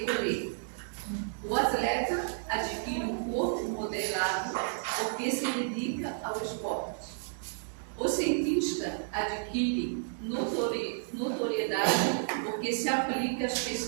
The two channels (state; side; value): silent; left; digital silence